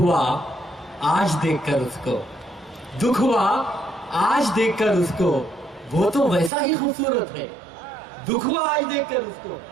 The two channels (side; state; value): left; drops out; at 6.5 s